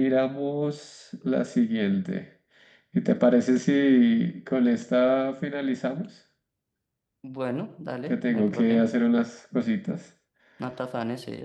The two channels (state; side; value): identical; both; correlation 1.00